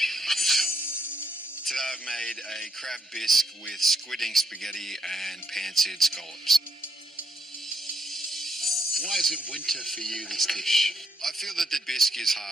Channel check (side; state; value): both; normal; correlation 0.74